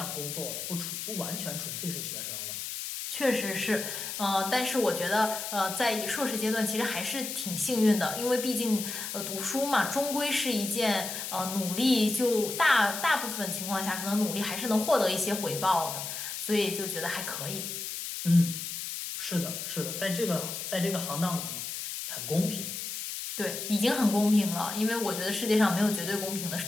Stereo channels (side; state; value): left; noise; hiss, 6 dB below the sound